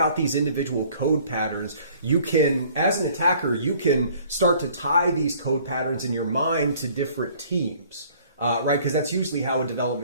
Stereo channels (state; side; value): inverted; both; correlation -0.55